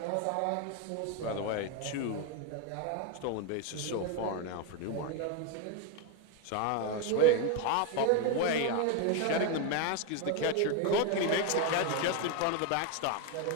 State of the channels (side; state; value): both; different; correlation 0.01